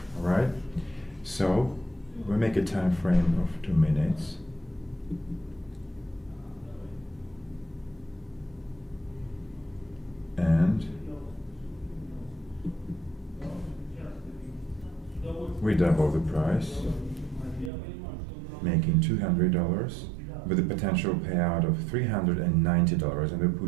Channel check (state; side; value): drops out; left; at 17.7 s